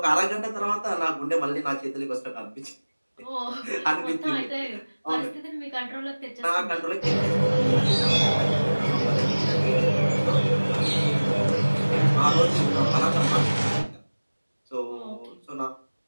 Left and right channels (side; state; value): both; inverted; correlation -1.00